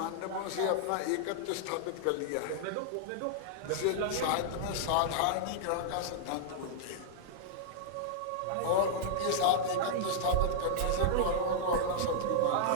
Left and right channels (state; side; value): different; both; correlation -0.01